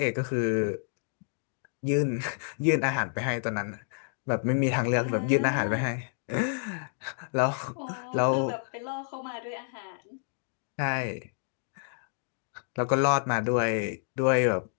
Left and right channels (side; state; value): right; silent; digital silence